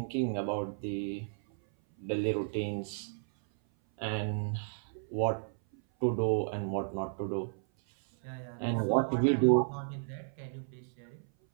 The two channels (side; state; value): left; silent; 56 dB below the other